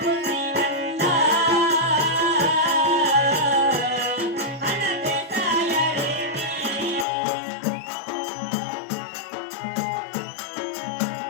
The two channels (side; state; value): right; drops out; at 7.1 s